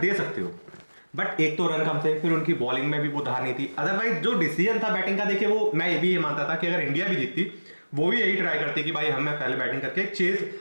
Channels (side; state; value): both; inverted; correlation -1.00